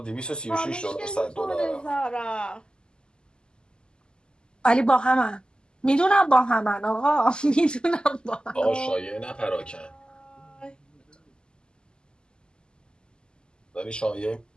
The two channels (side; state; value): right; late; 0.047 ms